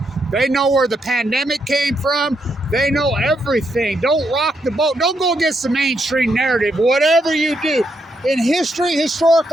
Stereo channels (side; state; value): both; normal; correlation 0.79